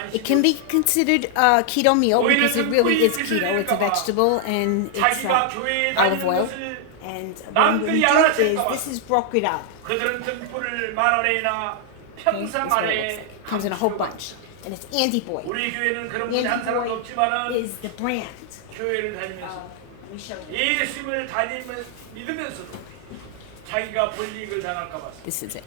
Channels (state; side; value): different; both; correlation 0.00